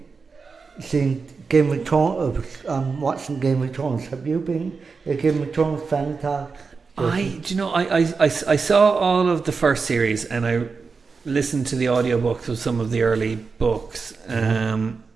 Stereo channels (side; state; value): left; quieter; 4.8 dB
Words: Game of Thrones. I'm watching Game of Thrones. Have you been a Game of Thrones fan at all? I saw all of the first series and I listened to the audiobooks of some of the early books.